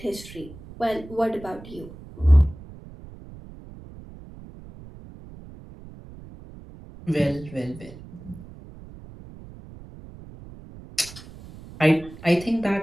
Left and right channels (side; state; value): right; noise; rumble, 17 dB below the sound